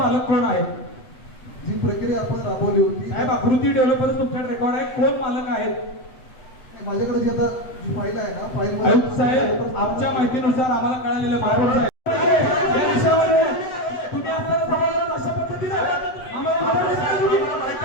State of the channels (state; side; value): late; right; 8.2 ms